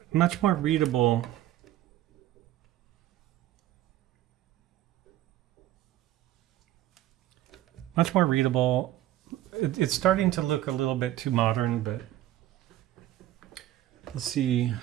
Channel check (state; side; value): quieter; left; 13.8 dB